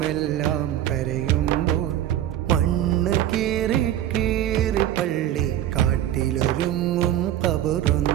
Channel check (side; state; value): left; quieter; 11.9 dB